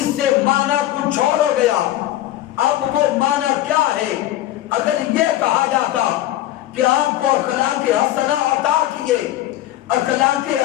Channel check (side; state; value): right; quieter; 14.0 dB